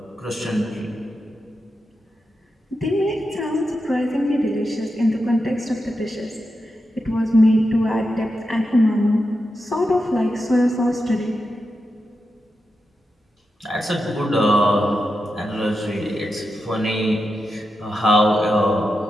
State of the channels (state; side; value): normal; both; correlation 0.89